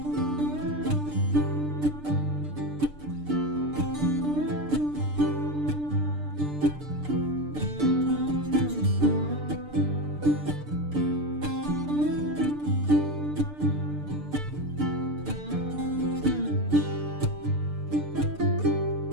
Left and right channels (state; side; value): late; left; 6.7 ms